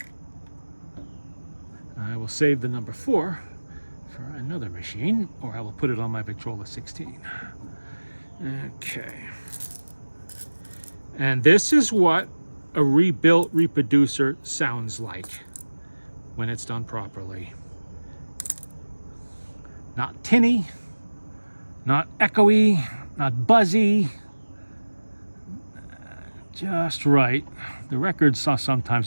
I will save the number 4 for another machine, or I will put it on my Victrola 16. Okay. And this is what a rebuilt reproducer sounds like when it's done properly. Not tinny, not echoey, not buzzy, just right. The records are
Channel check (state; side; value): inverted; both; correlation -1.00